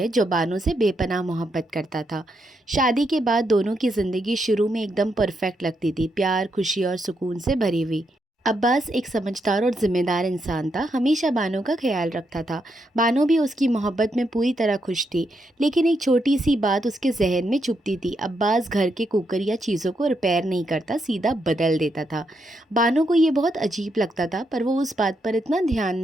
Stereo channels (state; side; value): normal; both; correlation 0.80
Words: जो बानो से बेपनाह मोहब्बत करता था। शादी के बाद दोनों की ज़िंदगी शुरू में एकदम परफेक्ट लगती थी, प्यार, खुशी और सुकून से भरी हुई। अब्बास एक समझदार और जिम्मेदार इंसान था, हमेशा बानो का ख्याल रखता था। बानो भी उसकी मोहब्बत में पूरी तरह खुश थी, लेकिन एक छोटी सी बात उसके जहन में चुभती थी। अब्बास घर के कुकर या चीज़ों को रिपेयर नहीं करता, सीधा बदल देता था। बानो को ये बहुत अजीब लगता था, पर वो उस बात पर इतना ध्यान